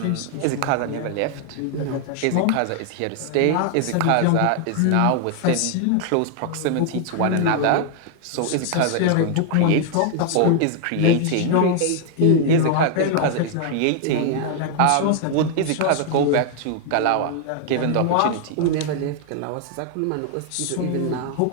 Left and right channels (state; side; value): different; both; correlation 0.00